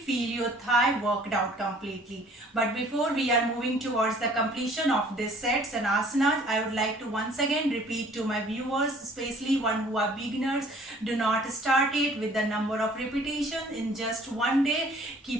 your thigh worked out completely. But before we are moving towards the completion of these sets and asanas, I would like to once again repeat to my viewers, especially one who are beginners, do not start it with the number of repetitions in just one day.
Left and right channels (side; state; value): both; normal; correlation 0.55